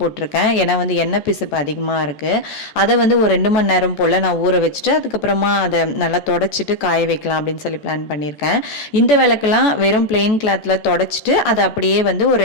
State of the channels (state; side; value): late; right; 14 ms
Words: போட்டிருக்கேன். ஏன்னா வந்து எண்ணெய் பிசுப்பு அதிகமாக இருக்குது. அதை வந்து ஒரு 2 மணி நேரம் போல் நான் ஊற வச்சுட்டு அதுக்கப்புறமா அதை நல்லா தொடச்சிட்டு காய வைக்கலாம் அப்படின்னு சொல்லி பிளான் பண்ணியிருக்கேன். இந்த விளக்கெல்லாம் வெறும் பிளெயின் கிளாத்தில் தொடச்சிட்டு அதை அப்படியே வந்து ஒரு